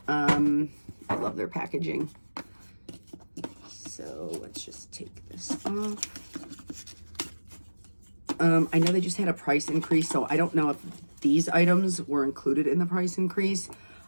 I love their packaging. So let's just take this off. I know they just had a price increase, so I don't know if these items were included in the price increase.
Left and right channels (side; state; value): both; inverted; correlation -1.00